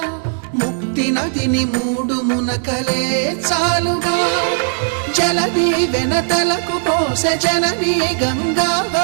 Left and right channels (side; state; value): left; silent; 61 dB below the other